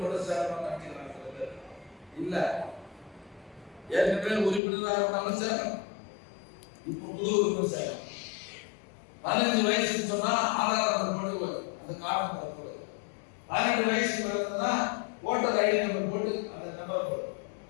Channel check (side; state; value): right; drops out; at 4.6 s